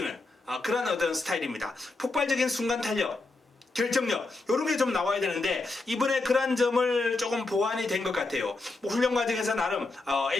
그런 어떤 스타일입니다. 폭발적인 순간 탄력, 결정력 이런 게 좀 나와야 되는데 이번에 그런 점을 조금 보완이 된 것 같아요. 뭐 훈련 과정에서 나름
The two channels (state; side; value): quieter; right; 3.3 dB